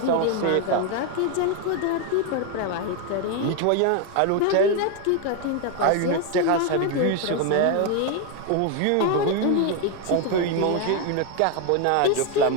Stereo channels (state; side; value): different; both; correlation 0.01